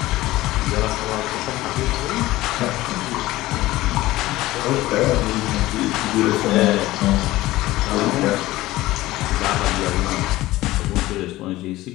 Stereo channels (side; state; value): right; quieter; 17.4 dB